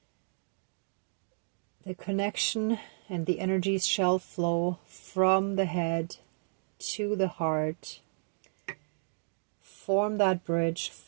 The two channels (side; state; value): left; silent; digital silence